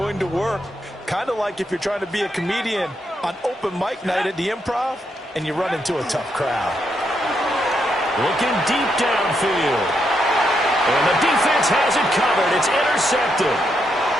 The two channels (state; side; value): normal; both; correlation 0.80